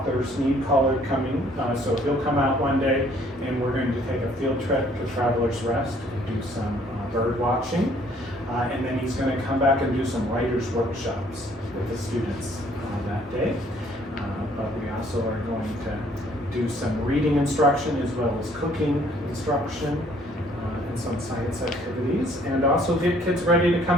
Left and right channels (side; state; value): both; normal; correlation 0.61